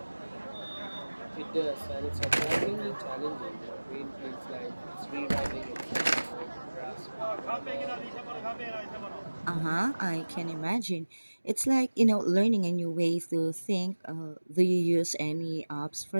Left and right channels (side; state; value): both; inverted; correlation -1.00